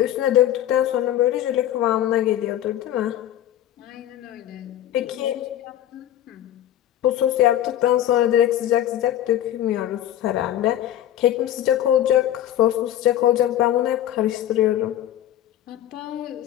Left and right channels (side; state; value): right; quieter; 12.0 dB